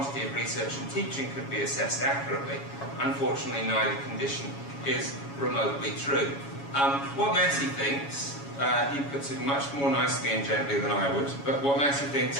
of research and teaching could be assessed accurately. Unfortunately, neither condition is remotely true. What Massey thinks, he puts it much more nicely and gently than I would, but what Massey thinks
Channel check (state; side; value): late; right; 7.2 ms